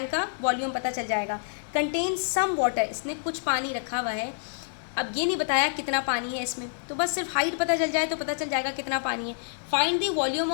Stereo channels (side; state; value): right; silent; digital silence